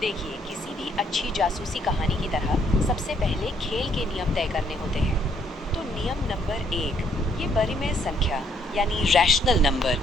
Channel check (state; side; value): normal; both; correlation 0.68